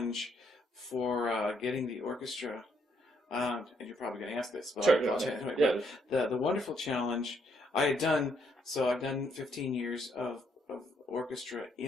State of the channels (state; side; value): normal; both; correlation 0.72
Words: for getting the orchestra, and you're probably going to ask this, but Sure. I'll tell you anyway, Yeah. but the wonderful challenge I've done 15 years of orchestra